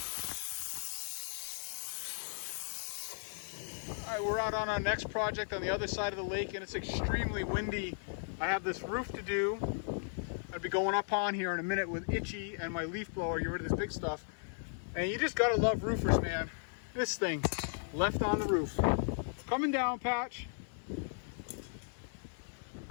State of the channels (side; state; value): right; silent; 54 dB below the other